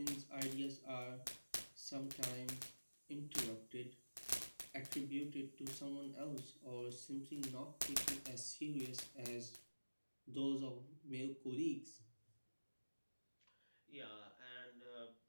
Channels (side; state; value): both; inverted; correlation -1.00